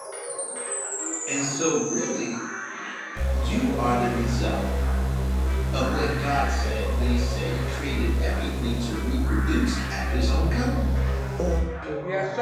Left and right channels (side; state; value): both; identical; correlation 1.00